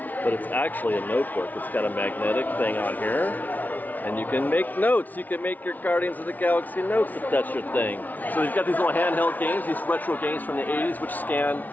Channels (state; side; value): late; right; 0.078 ms